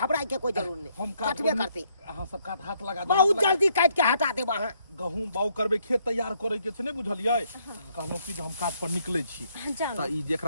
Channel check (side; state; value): both; inverted; correlation -0.71